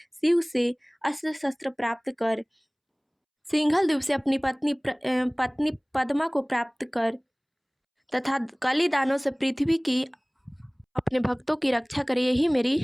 शिव से अस्त्र शस्त्र प्राप्त कर सिंघल द्वीप से अपनी पत्नी पद्मा को प्राप्त कर तथा कली दानों से पृथ्वी की अपने भक्तों की रक्षा करे, यही मेरी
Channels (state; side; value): identical; both; correlation 1.00